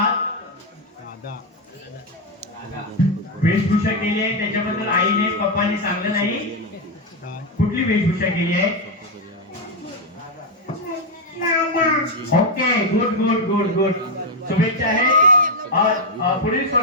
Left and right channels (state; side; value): normal; both; correlation 0.03